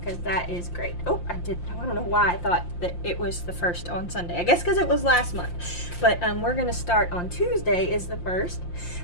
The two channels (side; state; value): right; late; 5.7 ms